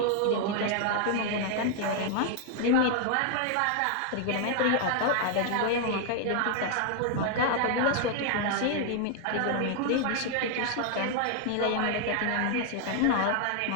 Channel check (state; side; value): different; both; correlation 0.00